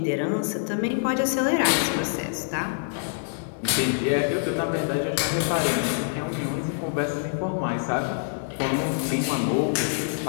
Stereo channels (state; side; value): silent; right; digital silence